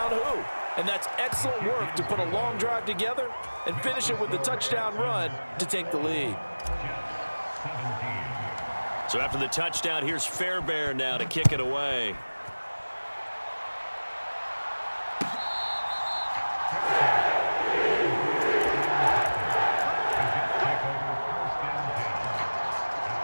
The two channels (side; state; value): both; inverted; correlation -1.00